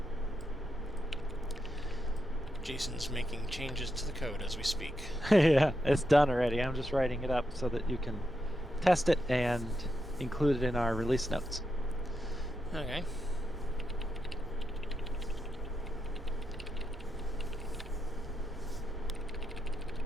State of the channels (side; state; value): right; noise; rumble, 18 dB below the sound